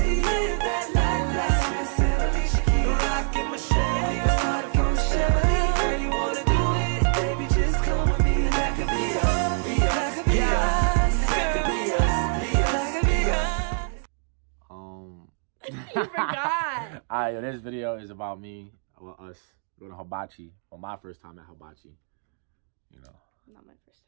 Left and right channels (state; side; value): silent; left; 58 dB below the other